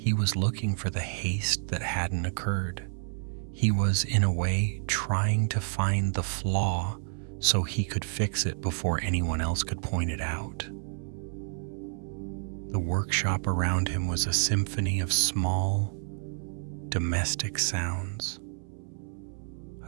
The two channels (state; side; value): silent; left; 58 dB below the other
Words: was looking for the haste that hadn't occurred. He was, in a way, trying to find the flaw so he could fix it before anyone else could point it out. The workshop around him was a symphony of small, domestic sounds.